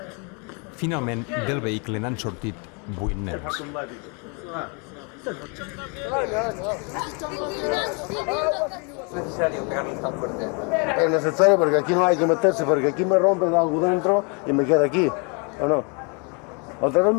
Finalment, del vehicle n'han sortit 8 nens. Es necesario porque aquí no hay que meterse, porque aquí me rompen algo dentro y me queda aquí, ¿o no? Otra vez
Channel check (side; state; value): right; quieter; 34.6 dB